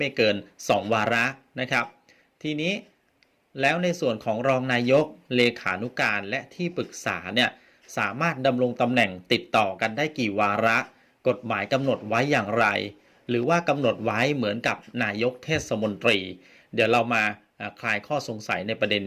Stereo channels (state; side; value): identical; both; correlation 1.00